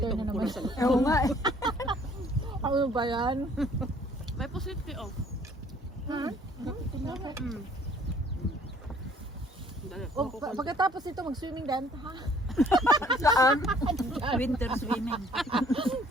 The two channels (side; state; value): both; normal; correlation 0.58